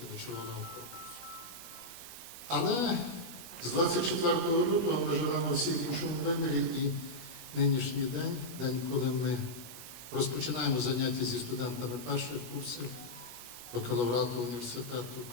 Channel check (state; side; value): late; right; 17 ms